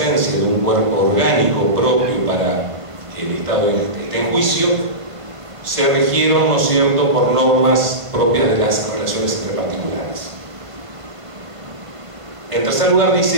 de un cuerpo orgánico propio para que el Estado esté en juicio, se regieron, ¿no es cierto?, por normas propias de las relaciones entre particulares. En tercer lugar,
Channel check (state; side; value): late; left; 1.5 ms